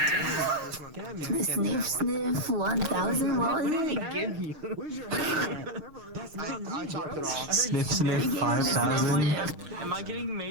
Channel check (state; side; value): late; left; 6.5 ms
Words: Sniff, sniff, 1000, what was it? Where's your hair? That's not I chopped it off. Sniff Sniff 5000. Am I getting